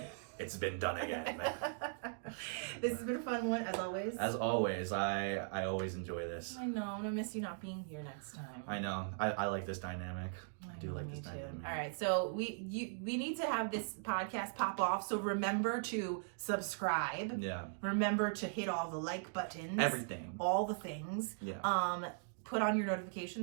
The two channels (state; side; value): silent; left; digital silence